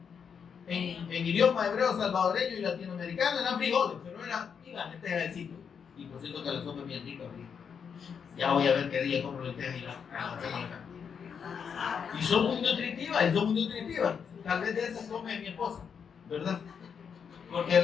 en idioma hebreo, salvadoreño y latinoamericano, eran frijoles, pero eran lentejas del sitio. Y por cierto que la sopa es bien rica. Ya voy a ver qué día compro lentejas y la hacemos acá. Y son muy nutritivas, Tal vez de esas come mi esposa, ¿verdad? Porque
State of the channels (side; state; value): right; quieter; 6.9 dB